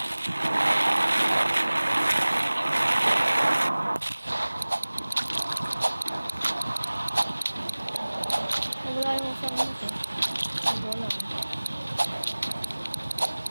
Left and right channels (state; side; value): inverted; both; correlation -1.00